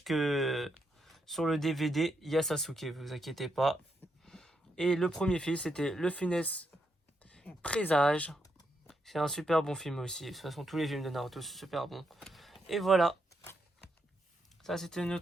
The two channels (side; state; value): both; normal; correlation 0.80